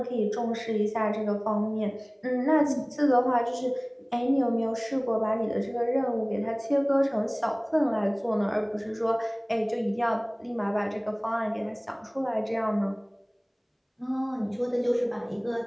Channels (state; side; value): identical; both; correlation 1.00